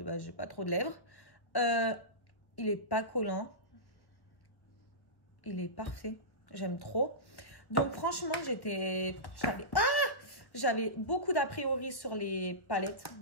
base, j'ai pas trop de lèvres. Il est pas collant. Il est parfait. J'aime trop. Donc, franchement, j'avais beaucoup d'a priori sur les palettes.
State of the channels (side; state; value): right; late; 1.4 ms